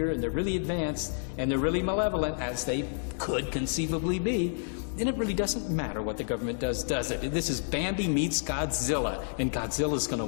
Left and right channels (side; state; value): right; silent; digital silence